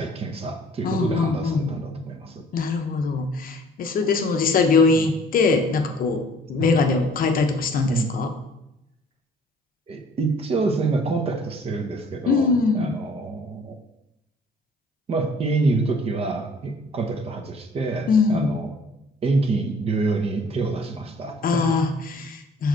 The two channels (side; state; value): both; normal; correlation 0.54